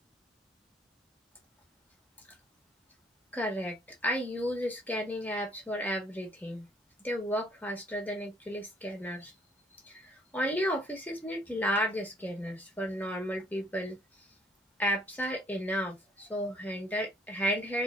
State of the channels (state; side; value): normal; both; correlation 0.62